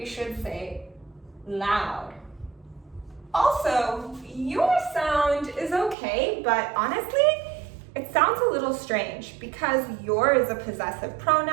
should say loud. Also, your sound is okay, but honestly, it sounds a little strange because your is a possessive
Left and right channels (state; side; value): drops out; left; at 6.0 s